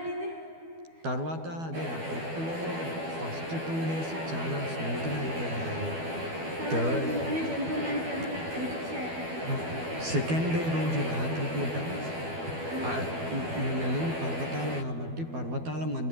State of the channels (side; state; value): left; late; 12 ms